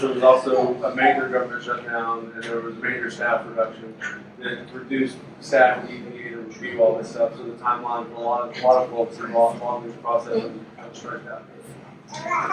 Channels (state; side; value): identical; both; correlation 1.00